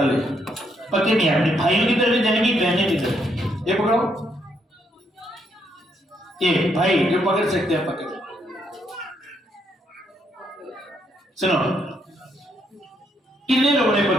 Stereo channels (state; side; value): normal; both; correlation 0.75